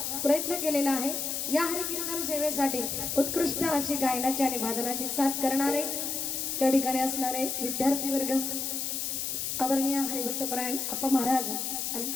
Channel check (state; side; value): noise; left; hiss, 2 dB below the sound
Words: प्रयत्न केलेला आहे. या हरिकीर्तन सेवेसाठी उत्कृष्ट अशी गायनाची आणि वादनाची साथ करणारे त्या ठिकाणी असणारे विद्यार्थी वर्ग, आदरणीय हरिभक्तपरायण अप्पा महाराज आणि